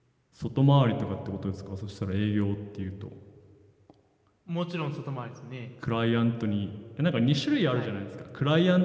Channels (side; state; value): both; identical; correlation 1.00